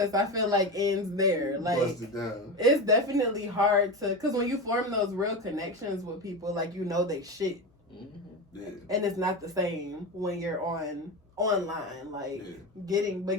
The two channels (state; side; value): normal; both; correlation 0.21